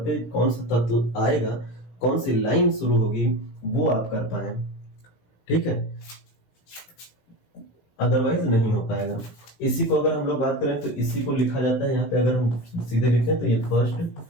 पे कौन सा तत्व आएगा, कौन सी लाइन शुरू होगी, वो आप कर पाए। ठीक है, अदरवाइज नहीं हो पाएगा। इसी को अगर हम लोग बात करें तो इसी को लिखा जाता है यहाँ पे, अगर हम सीधे लिखें तो ये फर्स्ट,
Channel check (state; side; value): late; right; 18 ms